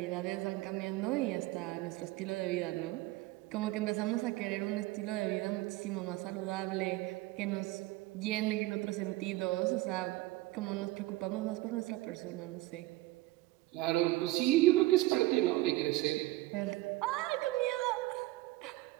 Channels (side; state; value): left; quieter; 18.5 dB